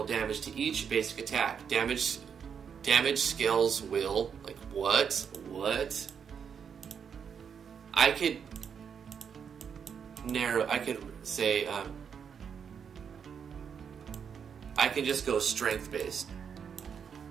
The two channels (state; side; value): quieter; left; 7.1 dB